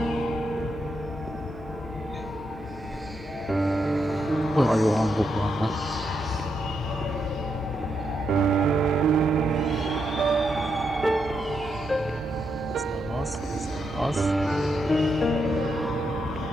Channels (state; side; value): normal; both; correlation 0.81